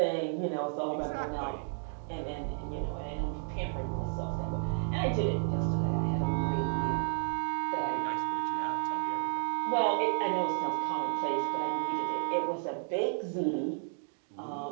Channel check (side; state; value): left; silent; digital silence